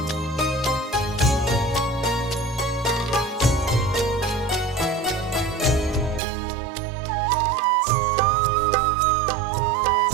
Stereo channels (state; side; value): drops out; left; at 6.2 s